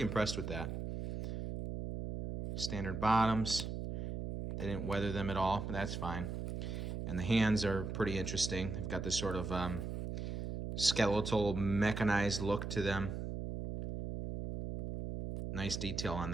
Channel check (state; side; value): noise; right; hum, 4 dB below the sound